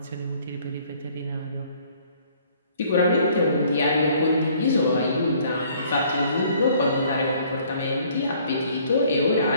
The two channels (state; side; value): inverted; both; correlation -0.59